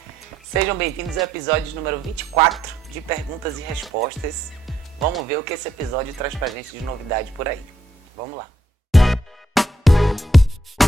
Sejam bem-vindos ao episódio número 24 de Perguntas e Respostas. Vamos ver o que esse episódio traz pra gente de novidade por aí. Vamos lá.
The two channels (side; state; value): both; normal; correlation 0.75